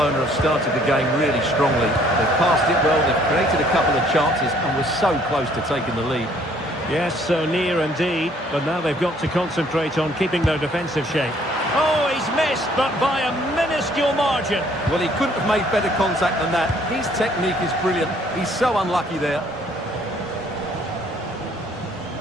have started the game really strongly. They've passed it well, they've created a couple of chances and were so close to taking the lead. Yes, so near indeed, but now they've got to concentrate on keeping their defensive shape. Oh, he's missed, but by a minuscule margin. Well, he couldn't have made better contact than that. His technique is brilliant. He's so unlucky there.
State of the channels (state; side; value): normal; both; correlation 0.61